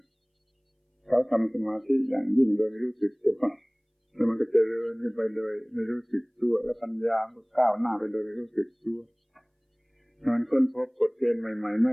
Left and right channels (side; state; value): both; identical; correlation 1.00